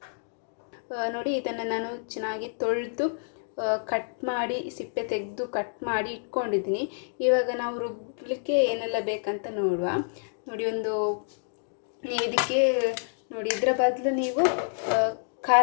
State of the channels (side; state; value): right; silent; digital silence